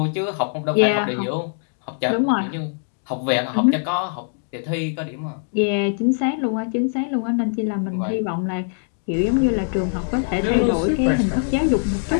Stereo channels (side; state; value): right; silent; 64 dB below the other